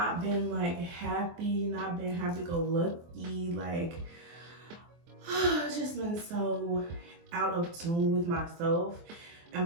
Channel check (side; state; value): left; late; 23 ms